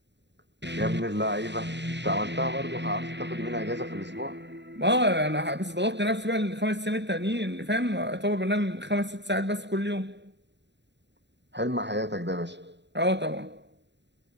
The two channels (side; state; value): left; late; 0.51 ms